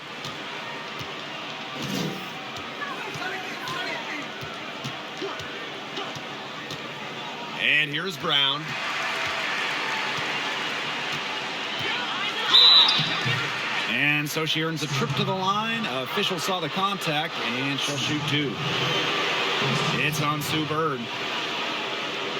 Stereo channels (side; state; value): both; identical; correlation 1.00